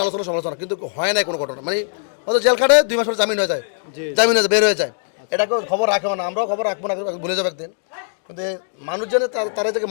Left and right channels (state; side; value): silent; right; digital silence